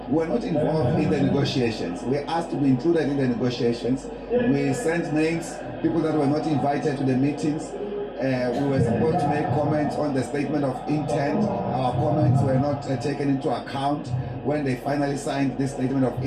we were not involved in the negotiations. We asked to be included in the negotiations. We sent names, people that were not invited to the meetings. We were supposed to make comments on the statement of intent. Our comments were not taken into account when they finally signed this statement of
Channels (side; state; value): both; identical; correlation 1.00